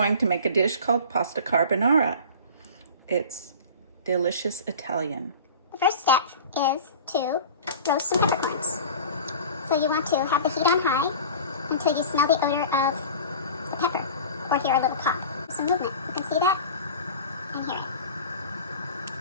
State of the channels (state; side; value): inverted; both; correlation -0.38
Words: to make a dish called pasta carbonara. It's delicious Italian. The first step is to roast some peppercorns. So you want to have the heat on high until you smell the odor of the pepper or hear a little pop. Some movement. You can see that and hear it.